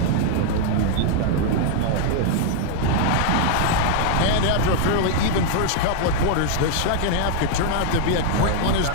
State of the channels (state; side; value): different; both; correlation 0.00